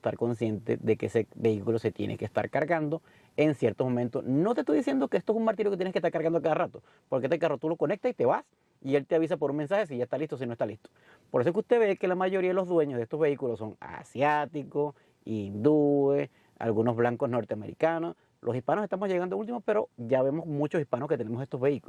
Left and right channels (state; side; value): identical; both; correlation 1.00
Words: consciente de que ese vehículo se tiene que estar cargando en ciertos momentos. No te estoy diciendo que esto es un martirio que tienes que estar cargando cada rato, porque este carro tú lo conectas y te vas y él te avisa por un mensaje si ya está listo o si no está listo. Por eso es que usted ve que la mayoría de los dueños de estos vehículos son asiáticos, hindúes, algunos blancos norteamericanos. Los hispanos estamos llegando últimos, pero ya vemos muchos hispanos que tenemos estos